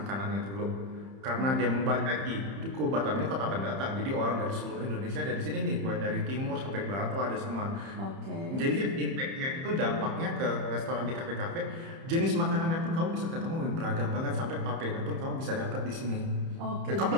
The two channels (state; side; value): late; left; 30 ms